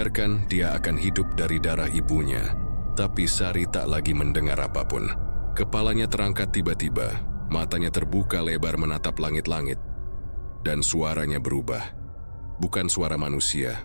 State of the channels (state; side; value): inverted; both; correlation -1.00